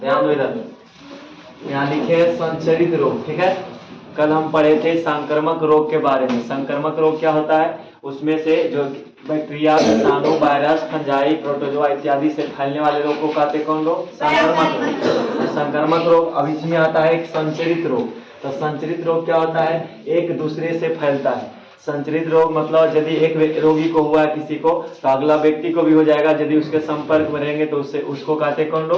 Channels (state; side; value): identical; both; correlation 1.00